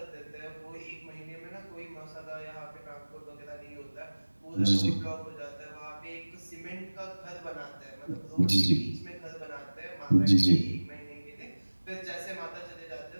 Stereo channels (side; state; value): both; inverted; correlation -1.00